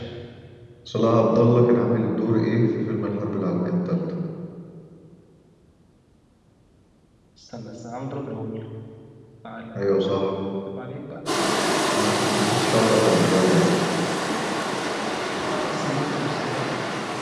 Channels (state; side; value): identical; both; correlation 1.00